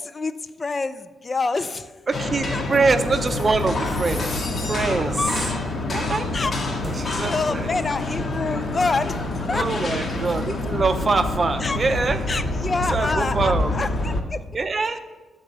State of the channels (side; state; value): both; normal; correlation 0.80